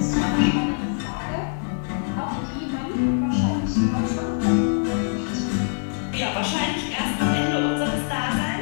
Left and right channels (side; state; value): right; silent; 63 dB below the other